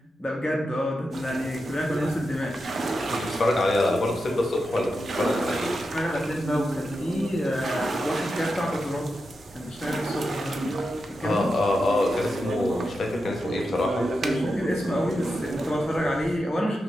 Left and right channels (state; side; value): normal; both; correlation 0.88